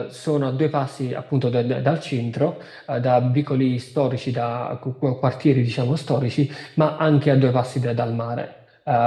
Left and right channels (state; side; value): identical; both; correlation 1.00